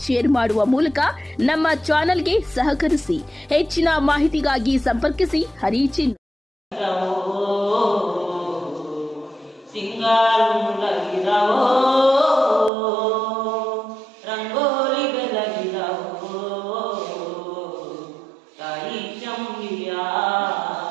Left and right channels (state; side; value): drops out; left; at 12.7 s